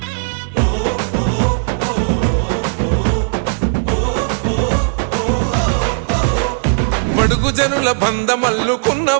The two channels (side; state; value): left; silent; 69 dB below the other